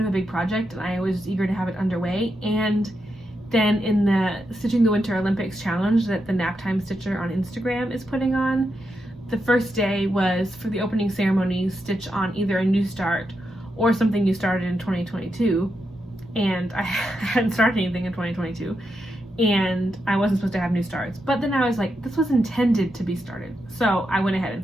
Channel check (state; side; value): normal; both; correlation 0.85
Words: of a big project and I was eager to have it underway. And then in the Stitching the Winter Olympics challenge that the Naptime Stitcher on Instagram is putting on, the first day was for the opening ceremony, stitch on either a new start or something you started in 2022. And I hadn't started anything in 2022. And I wasn't supposed to have new starts. But then I was like, this was intended to be started. So I went ahead and